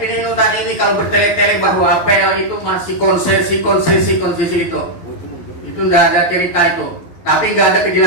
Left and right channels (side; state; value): right; late; 11 ms